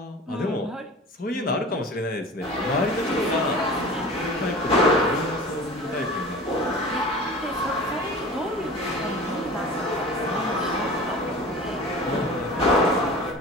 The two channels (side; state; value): both; normal; correlation 0.38